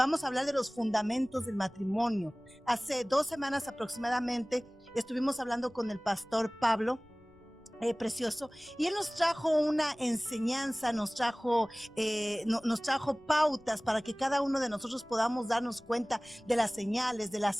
a hablar de los fundamentos del matrimonio. Hace 2 semanas aproximadamente estuvimos hablando con el pastor Pablo. Precioso, y él nos trajo una enseñanza, nos trajo pautas para que cada uno de nosotros podamos darnos cuenta de las señales, de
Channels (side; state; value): left; noise; rumble, 29 dB below the sound